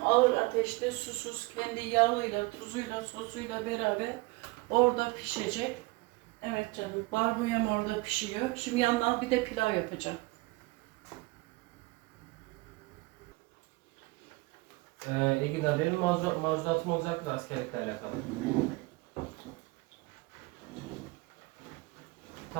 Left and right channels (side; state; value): left; quieter; 23.5 dB